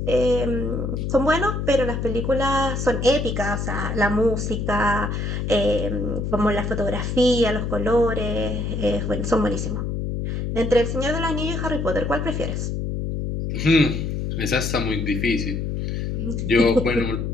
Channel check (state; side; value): noise; left; hum, 2 dB below the sound